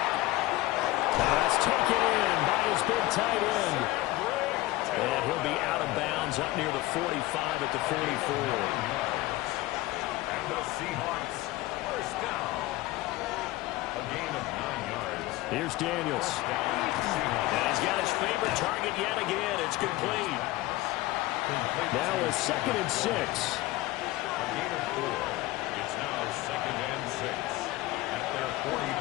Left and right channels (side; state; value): right; quieter; 18.1 dB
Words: That's taken in by his big tight end. And he'll be out of bounds up near the 45 at the 44. And the Seahawks first down. A gain of 9 yards. Here's Daniels. And he's got his favorite target yet again. It's complete. Now a 2nd and 6. A gain of 4. It's now 2nd and 6.